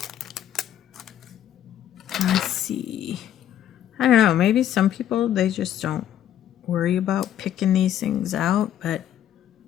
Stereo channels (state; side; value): quieter; right; 10.9 dB